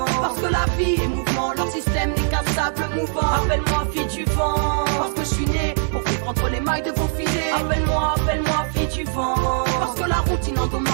parce que la vie est mouvement, leur système n'est qu'un sable mouvant. Appelle-moi fille du vent, parce que je suis né pour vivre entre les mailles de vos filets. Appelle-moi, appelle-moi fille du vent, parce que la routine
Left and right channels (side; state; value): left; silent; digital silence